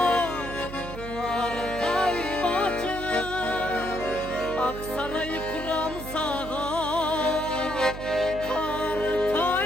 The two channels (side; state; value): right; noise; hum, 10 dB below the sound